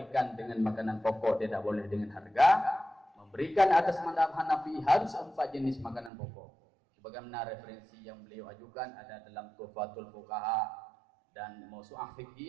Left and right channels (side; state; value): left; drops out; at 6.1 s